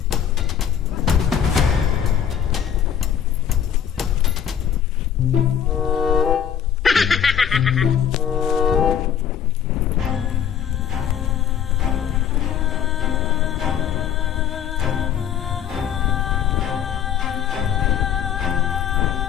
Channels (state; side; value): quieter; right; 8.9 dB